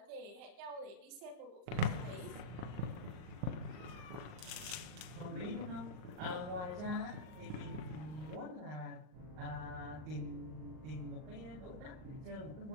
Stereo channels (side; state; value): left; late; 39 ms